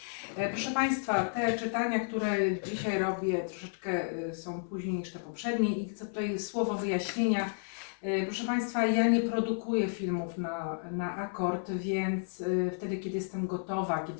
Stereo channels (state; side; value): silent; right; 56 dB below the other